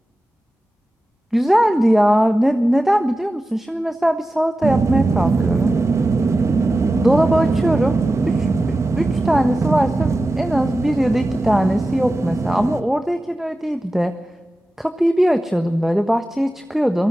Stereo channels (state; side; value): normal; both; correlation 0.94